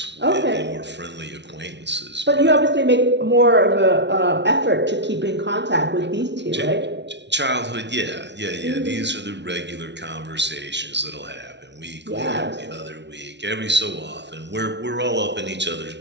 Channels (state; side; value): late; left; 0.51 ms